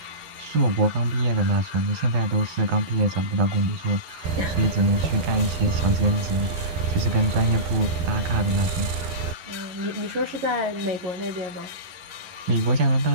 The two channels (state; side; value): late; left; 12 ms